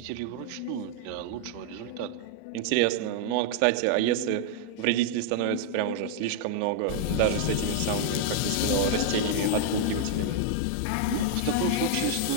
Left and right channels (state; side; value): different; both; correlation 0.00